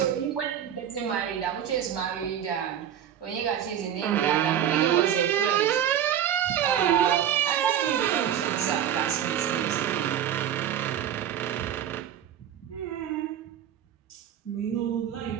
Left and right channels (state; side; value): quieter; left; 10.0 dB